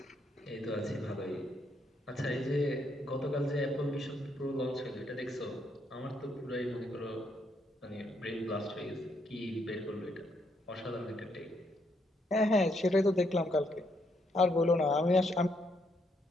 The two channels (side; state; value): both; normal; correlation 0.75